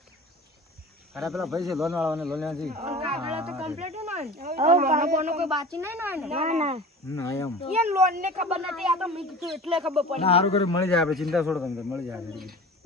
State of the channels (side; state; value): both; normal; correlation 0.37